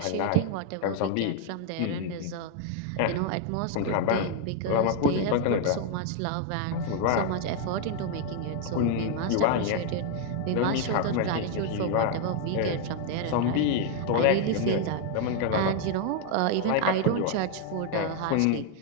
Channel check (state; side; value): different; both; correlation 0.00